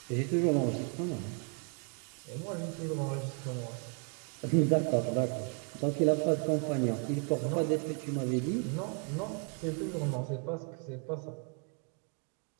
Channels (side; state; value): left; quieter; 39.3 dB